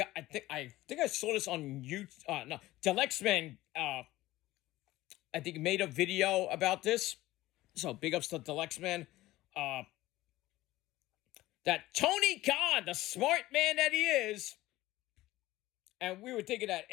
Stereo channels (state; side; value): quieter; right; 17.1 dB